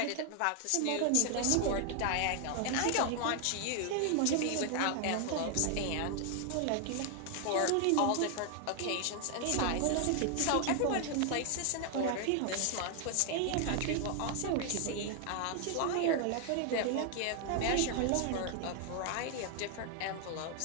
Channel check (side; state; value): both; different; correlation 0.00